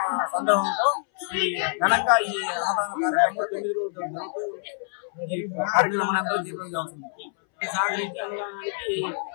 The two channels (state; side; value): silent; right; 61 dB below the other